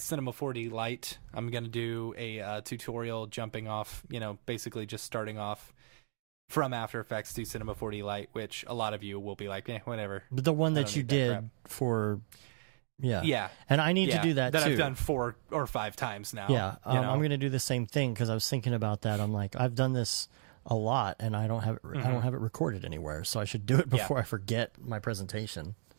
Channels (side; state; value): left; silent; digital silence